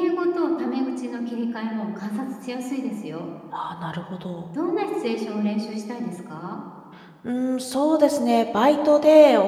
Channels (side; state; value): both; identical; correlation 1.00